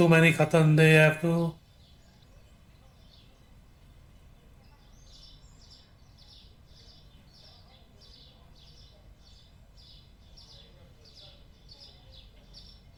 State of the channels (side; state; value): both; identical; correlation 1.00